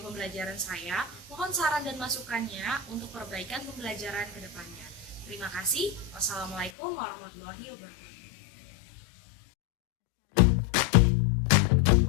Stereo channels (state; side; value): drops out; right; at 6.7 s